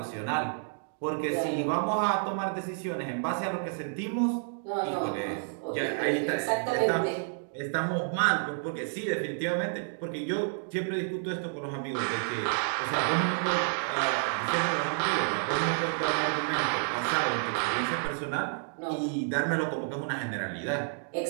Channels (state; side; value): silent; left; digital silence